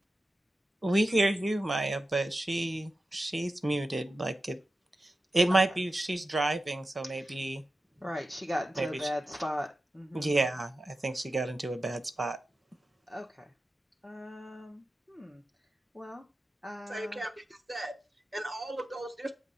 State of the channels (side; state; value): both; normal; correlation 0.92